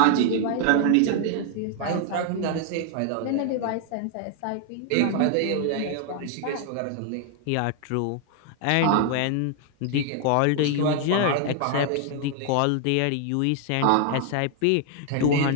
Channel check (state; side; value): different; both; correlation 0.00